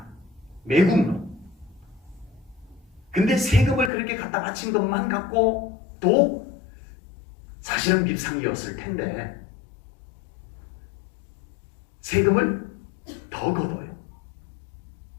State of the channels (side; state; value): right; drops out; at 3.9 s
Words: 매국노. 근데 세금을 그렇게 갖다 바친 것만 갖고 또 사실은 밉상이었을 텐데 세금을 더 걷어요.